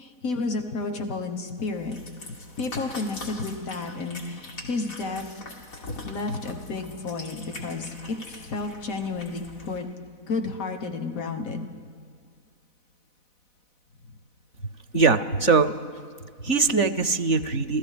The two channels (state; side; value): late; right; 4.0 ms